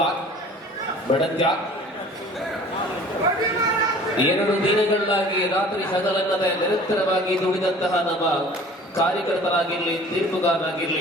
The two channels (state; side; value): normal; both; correlation 0.47